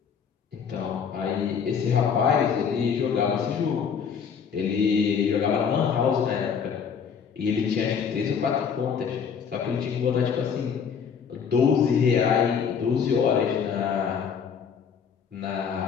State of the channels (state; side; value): quieter; right; 6.9 dB